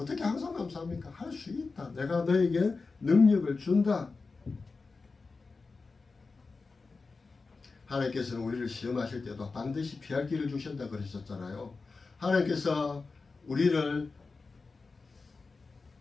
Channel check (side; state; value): right; quieter; 4.1 dB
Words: 항상 감사합니까? 할 수 있다. 내가 너에게 능력을 준다. 하나님께서는 우리를 시험하실 때도 반드시 피할 길을 주신다 그러셨잖아요. 하나님께서 우리를